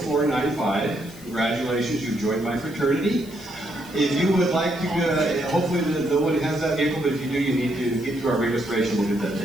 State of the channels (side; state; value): left; noise; hiss, 20 dB below the sound